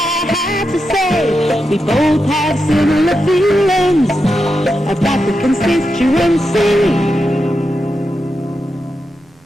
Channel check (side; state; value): both; normal; correlation 0.87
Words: have to say. We both have similar feelings about the constituency.